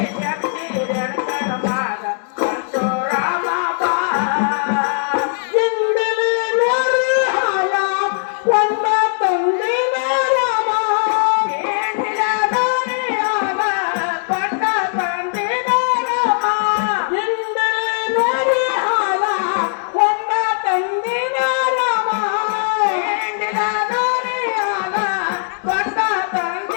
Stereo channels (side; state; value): right; silent; digital silence